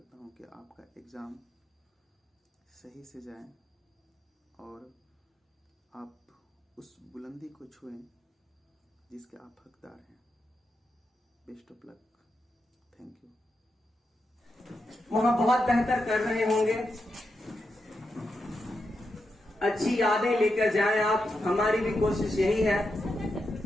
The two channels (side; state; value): both; normal; correlation 0.86